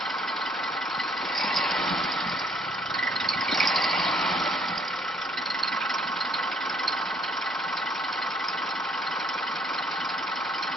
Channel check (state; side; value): normal; both; correlation 0.64